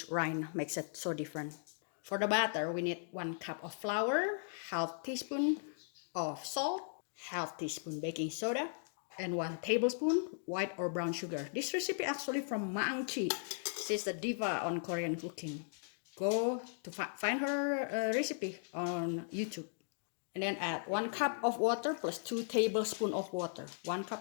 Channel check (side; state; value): right; silent; digital silence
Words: rind makes it so different. For the batter, we need 1 cup of flour, half teaspoon of salt, half teaspoon baking soda, and 1 tablespoon white or brown sugar. This recipe actually from Maang Chi. She's the diva on Korean cooking. Go to find her recipe on YouTube. And then add 1 cup of water plus 2 tablespoons of water. 1